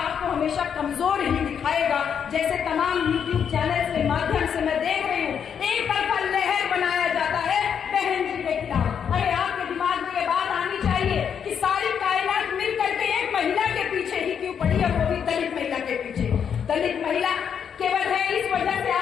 हमेशा कमजोर ही दिखाएगा। जैसे तमाम यूट्यूब चैनल के माध्यम से मैं देख रही हूँ, एक तरफा लहर बनाया जाता है बहन जी के खिलाफ। अरे आपके दिमाग में ये बात आनी चाहिए कि सारी कायनात मिल करके एक महिला के पीछे ही क्यों पड़ी, और वो भी दलित महिला के पीछे।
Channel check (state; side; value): quieter; right; 7.7 dB